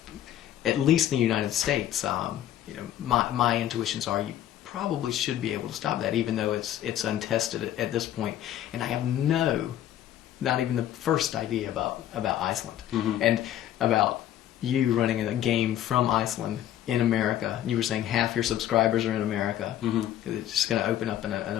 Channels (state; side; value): quieter; right; 11.9 dB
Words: at least in the United States, you know, my intuitions are you probably should be able to stop that, even though it's untested at this point. And I have not even the first idea about Iceland and about you running a game from Iceland in America. You were saying half your subscribers are in America. It's just going to open up an